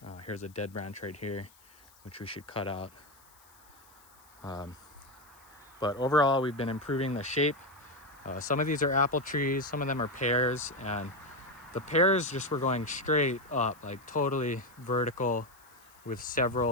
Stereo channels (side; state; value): left; noise; hiss, 27 dB below the sound